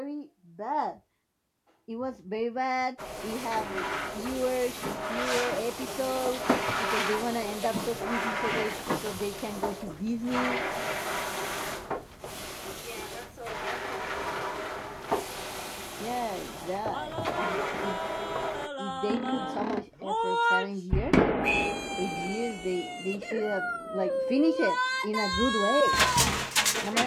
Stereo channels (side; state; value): both; identical; correlation 1.00